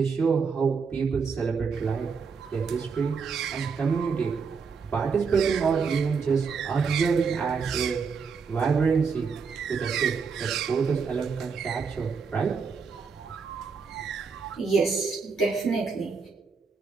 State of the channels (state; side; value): quieter; left; 5.4 dB